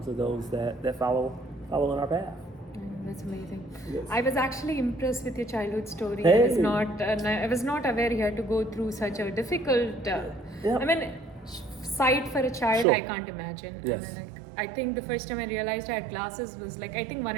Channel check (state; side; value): drops out; left; at 12.9 s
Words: of those that follow in our path. That's amazing. Yes. I was actually impressed with your childhood story. Hey. I was not aware you had to go through such a difficult. I mean, sight for a child, Sure. I can't imagine. Yes. I mean, I think the first time I realized I had glasses was like, I think